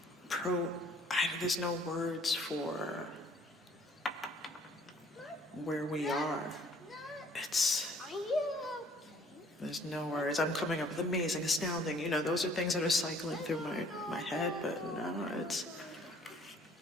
there's no words for where we are. There's no words. I'm coming up with amazing, astounding, you know, those are things that are cycling through my head, but no, it's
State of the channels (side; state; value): both; normal; correlation 0.58